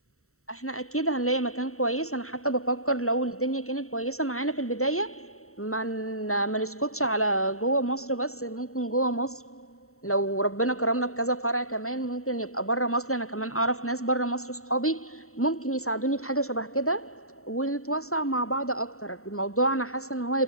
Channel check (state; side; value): late; right; 0.63 ms